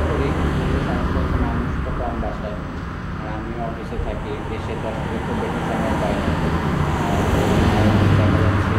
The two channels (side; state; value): both; identical; correlation 1.00